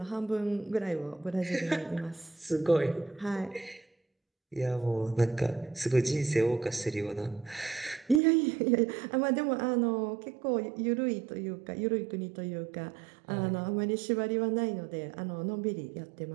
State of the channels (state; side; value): drops out; left; at 8.2 s